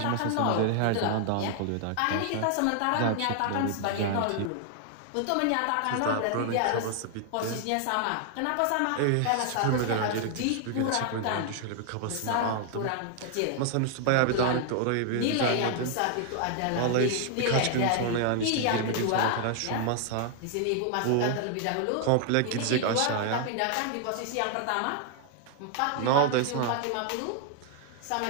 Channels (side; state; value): both; different; correlation 0.00